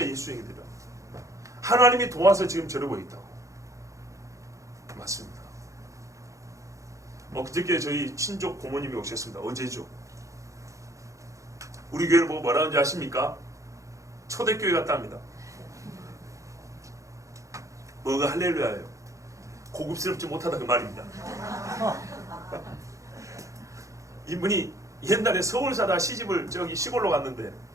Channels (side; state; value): left; late; 0.15 ms